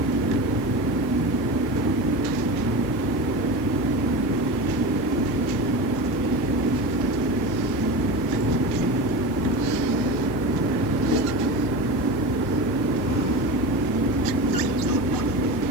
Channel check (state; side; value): noise; left; hiss, 23 dB below the sound